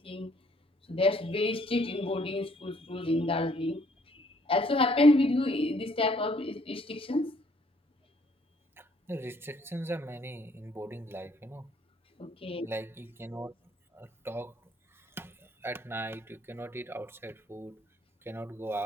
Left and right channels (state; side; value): normal; both; correlation 0.64